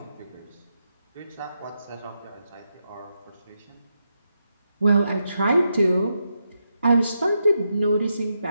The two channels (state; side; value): inverted; both; correlation -0.84